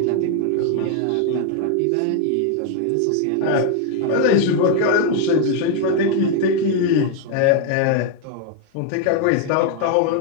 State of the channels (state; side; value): different; both; correlation 0.00